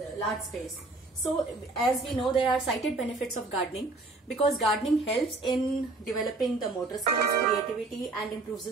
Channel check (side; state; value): left; quieter; 3.2 dB